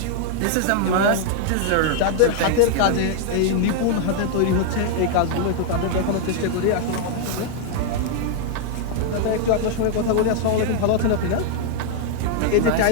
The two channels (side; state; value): both; different; correlation -0.01